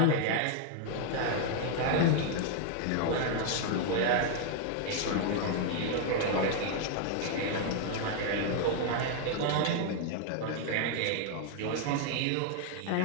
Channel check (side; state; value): both; different; correlation 0.00